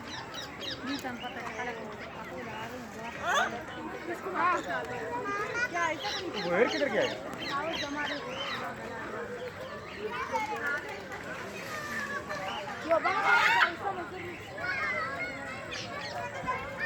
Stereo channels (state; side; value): identical; both; correlation 1.00